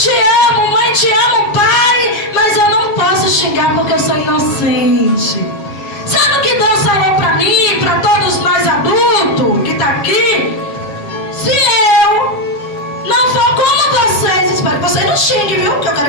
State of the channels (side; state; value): right; late; 7.4 ms